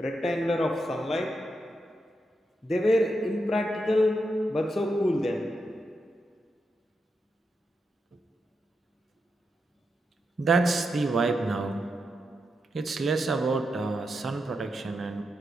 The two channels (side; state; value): both; normal; correlation 0.85